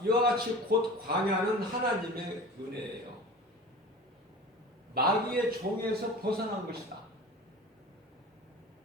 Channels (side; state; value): both; normal; correlation 0.37